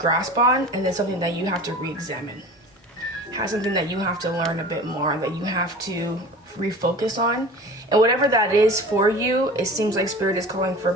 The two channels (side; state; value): both; normal; correlation 0.38